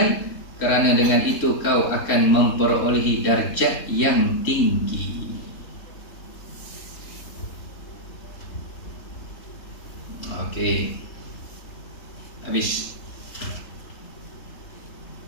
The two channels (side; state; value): right; late; 3.7 ms